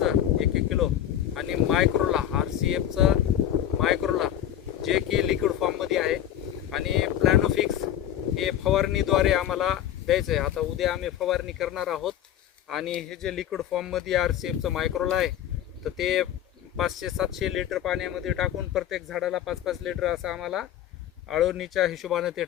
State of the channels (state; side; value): quieter; right; 11.0 dB